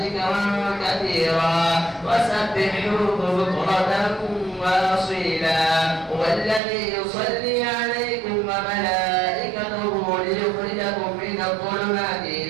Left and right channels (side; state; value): left; drops out; at 6.6 s